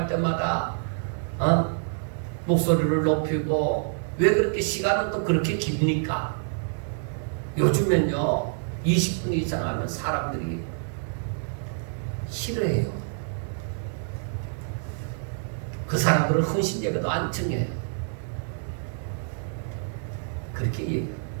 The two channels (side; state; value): left; silent; 60 dB below the other